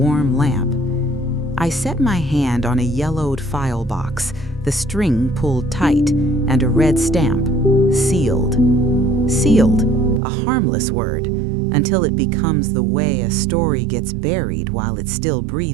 lamp. I set my hand on a yellowed file box, the string pulled tight, and a red stamp. Sealed. Sealed, a harmless word, until it becomes the way a story gets buried while it's still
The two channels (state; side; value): drops out; left; at 10.2 s